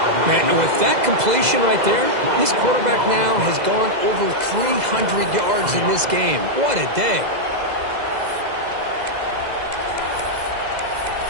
Man, and with that completion right there, this quarterback now has gone over 300 yards in this game. What a day.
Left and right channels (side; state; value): left; late; 2.0 ms